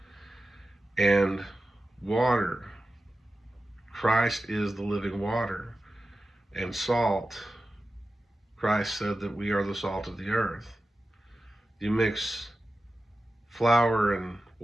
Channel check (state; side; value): normal; both; correlation 0.93